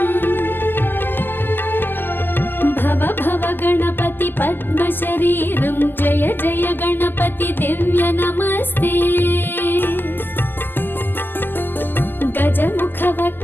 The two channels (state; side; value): late; right; 0.096 ms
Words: भव भव गणपति पद्म शरीरं जय जय गणपति दिव्य नमस्ते गजमुख